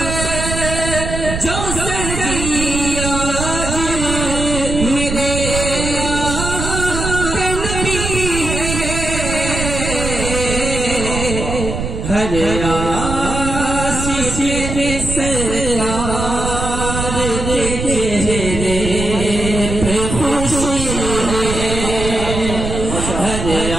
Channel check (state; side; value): noise; right; rumble, 4 dB below the sound